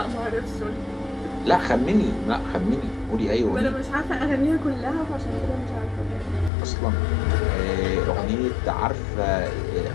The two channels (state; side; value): drops out; right; at 6.5 s